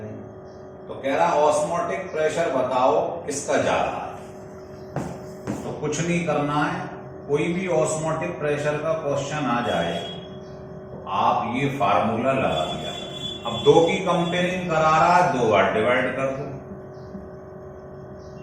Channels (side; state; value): both; identical; correlation 1.00